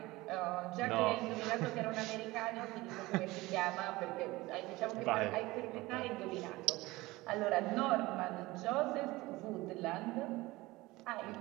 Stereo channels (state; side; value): quieter; left; 20.2 dB